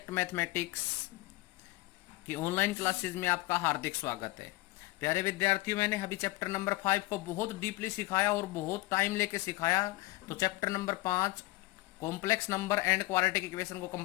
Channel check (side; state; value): right; quieter; 20.3 dB